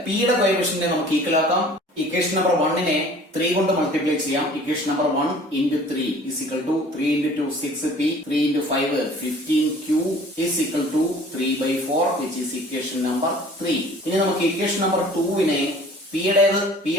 p യുടെ കോഎഫിഷ്യന്റിനെ നമുക്ക് ഈക്വൽ ആക്കാം. ഇക്വേഷൻ നമ്പർ 1നെ 3 കൊണ്ട് മൾട്ടിപ്ലൈ ചെയ്യാം. Equation number 1 into 3 is equal to 3 into 2 6p 3 into 5 15q is equal to 3/4 which is equation number 3. ഇനി നമുക്ക് ഇക്വേഷൻ നമ്പർ 2നെ p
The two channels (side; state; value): both; normal; correlation 0.49